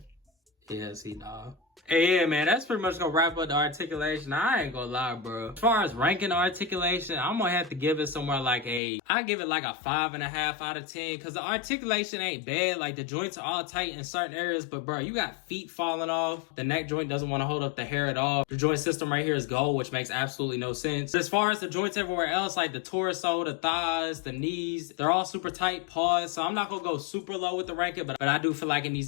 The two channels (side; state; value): right; drops out; at 8.8 s